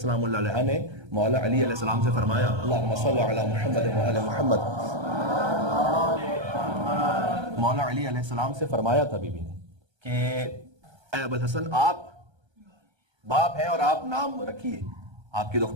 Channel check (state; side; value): late; left; 1.3 ms